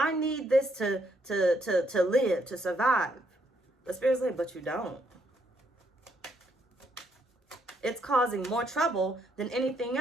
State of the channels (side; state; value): both; normal; correlation 0.73